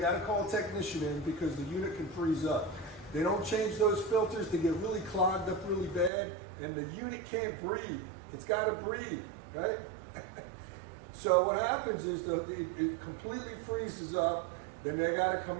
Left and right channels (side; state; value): left; drops out; at 6.1 s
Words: to call a technician in because the unit can freeze up. They don't change those filters, they get really clogged up really bad, and the unit can't breathe. It's got to breathe, right? So what happens is it completely freezes up. Then they got to